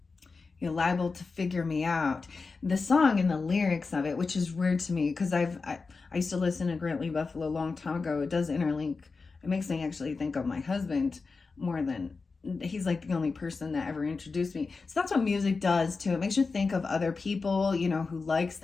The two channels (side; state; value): right; quieter; 4.3 dB